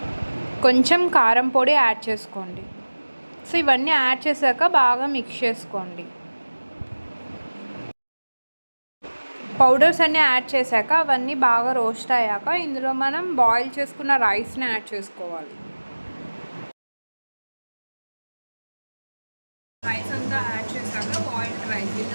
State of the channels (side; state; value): both; inverted; correlation -1.00